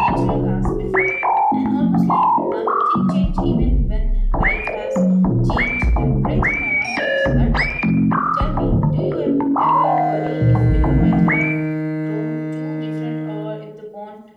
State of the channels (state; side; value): identical; both; correlation 1.00